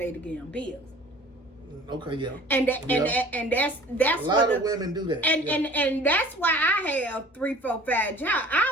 the damn bills. Okay, yeah. And that's A lot what of women do that. and, yeah. and that's why I have 3, 4, 5 jobs.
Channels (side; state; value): both; normal; correlation 0.47